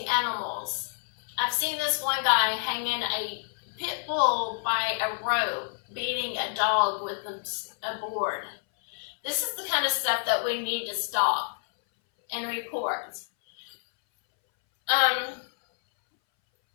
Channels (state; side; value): silent; right; 59 dB below the other